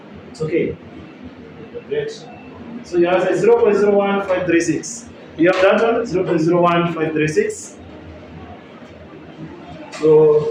It's okay. Great. So you have 0.01536. You have that one? 0.01536.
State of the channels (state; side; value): identical; both; correlation 1.00